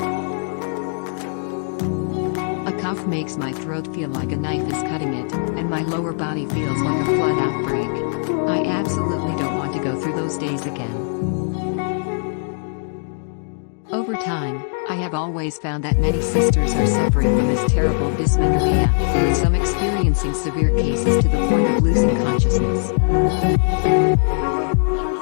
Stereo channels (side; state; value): right; silent; digital silence